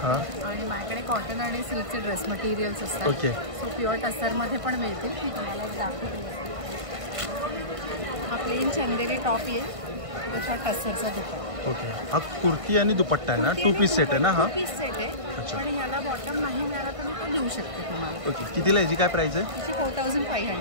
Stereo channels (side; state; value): left; late; 1.5 ms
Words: हां आणि माझ्याकडे कॉटन आणि सिल्कचे ड्रेस मटेरियल्स असतात. ओके. सो प्युअर टसरमध्ये पण मिळतील. मी तुम्हाला दाखवते. हा प्लेन चंदेरी टॉप येईल त्याचा टसरचा दुपट्टा. ओके. हा कुर्ती आणि दुपट्टा आहे ना? 2 पीस सेट आहे ना हा? 2 पीस सेट आहे. अच्छा. पण याला बॉटम नाही मिळाला तर मी तो देऊ शकते तुम्हाला. ओके. कितीला याची काय प्राइस आहे? त्याची